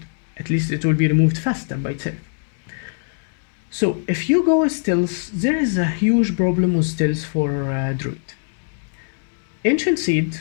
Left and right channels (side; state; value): right; silent; digital silence